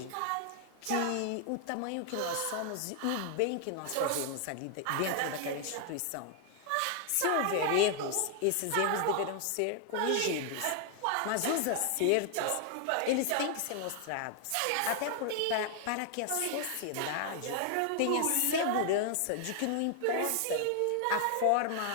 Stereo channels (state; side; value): different; both; correlation 0.00